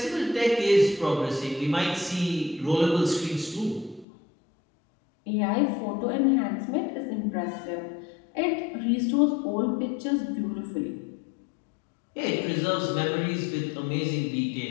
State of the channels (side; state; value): right; drops out; at 4.0 s